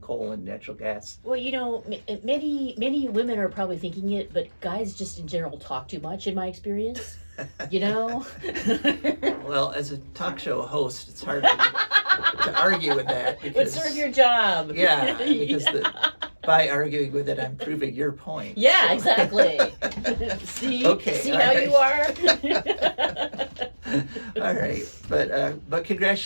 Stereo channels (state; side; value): inverted; both; correlation -1.00